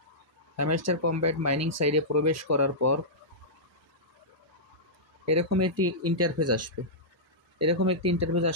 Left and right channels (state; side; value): normal; both; correlation -0.14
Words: হ্যামস্টার কম্ব্যাট মাইনিং সাইডে প্রবেশ করার পর এরকম একটি ইন্টারফেস আসবে। এরকম একটি ইন্টারফেস